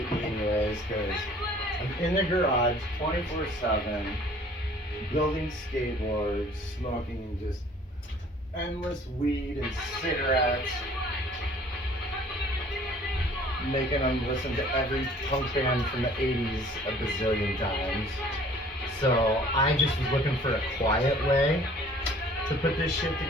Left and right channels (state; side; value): normal; both; correlation 0.53